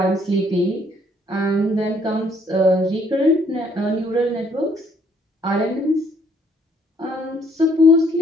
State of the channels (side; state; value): both; normal; correlation 0.65